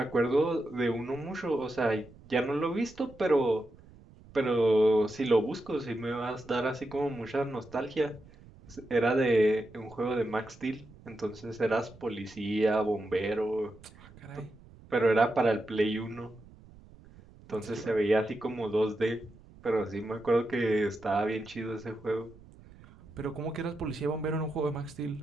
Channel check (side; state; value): right; noise; rumble, 22 dB below the sound